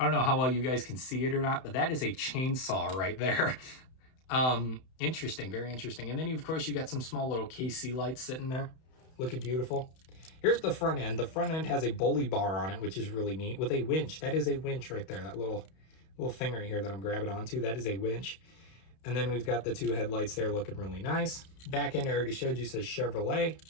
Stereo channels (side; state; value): right; late; 31 ms